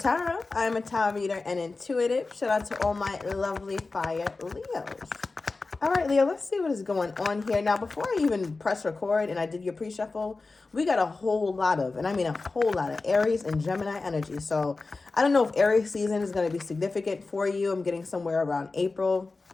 I'm a tarot reader and intuitive. Shout out to all my lovely fire Leos. All right, Leo, let's see what is going on here. Now, before I even press record and I did your pre-shuffle, we got a whole lot of, and I mean a whole lot of Aries and Gemini energy. So I don't know if Aries season is going to be significant for you. I'm getting somewhere around April.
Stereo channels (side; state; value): right; quieter; 3.7 dB